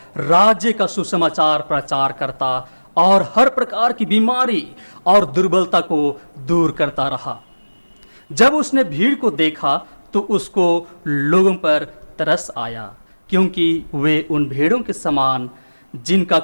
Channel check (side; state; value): both; inverted; correlation -1.00